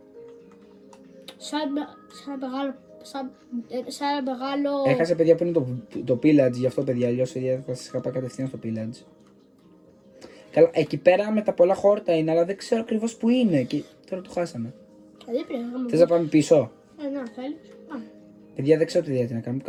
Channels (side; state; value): both; identical; correlation 1.00